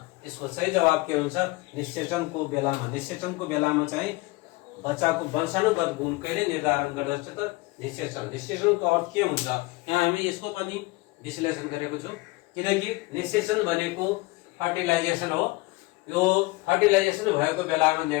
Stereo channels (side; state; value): right; quieter; 22.7 dB